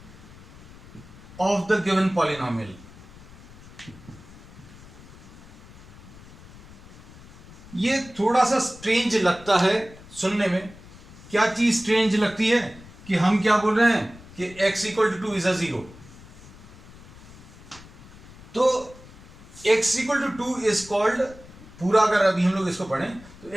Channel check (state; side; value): noise; left; rumble, 19 dB below the sound